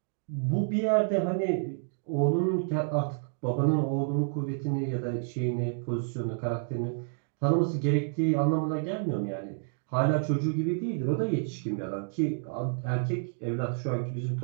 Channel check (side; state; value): left; silent; digital silence